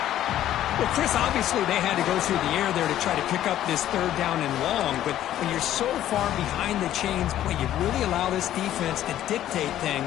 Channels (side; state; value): right; quieter; 12.3 dB